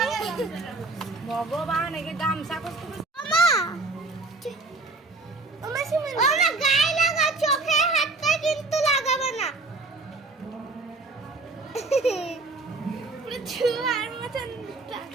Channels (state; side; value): quieter; left; 3.4 dB